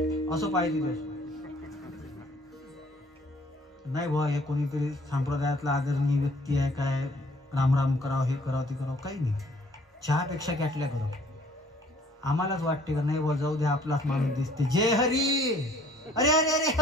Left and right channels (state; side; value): normal; both; correlation 0.57